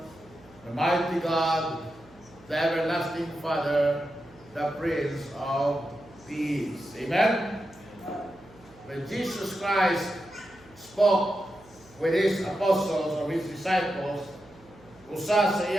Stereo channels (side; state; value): right; noise; hum, 27 dB below the sound